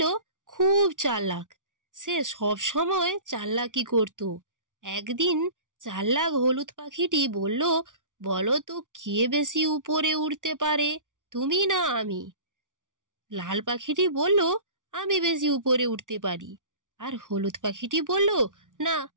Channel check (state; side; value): late; left; 0.87 ms